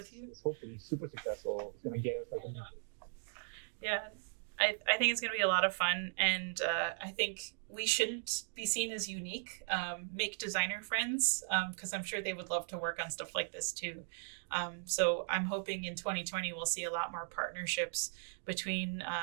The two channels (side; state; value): left; silent; digital silence